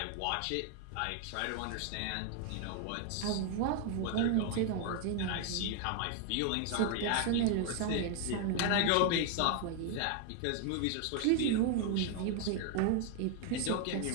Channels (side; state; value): both; different; correlation 0.01